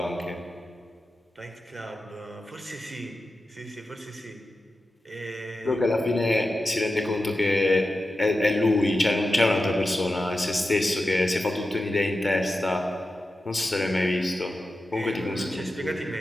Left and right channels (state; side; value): normal; both; correlation 0.92